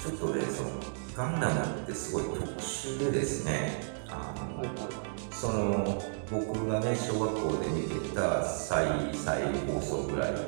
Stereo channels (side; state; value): left; silent; digital silence